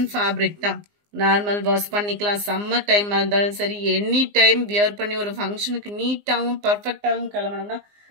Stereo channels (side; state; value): left; late; 19 ms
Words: ஃபேப்ரிக் தான். நார்மல் வாஷ் பண்ணிக்கலாம். சம்மர் டைமாக இருந்தாலும் சரி, எனி டைம் வியர் பண்ணி ஒரு ஃபங்க்ஷனுக்கு நீட்டாகவும் பர்ஃபெக்டாகவும் கிளம்பணும்னா